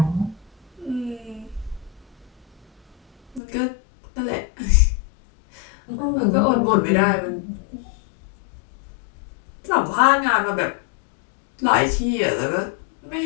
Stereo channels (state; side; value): drops out; right; at 3.4 s